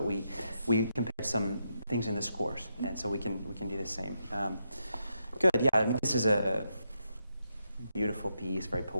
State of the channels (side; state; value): both; inverted; correlation -0.83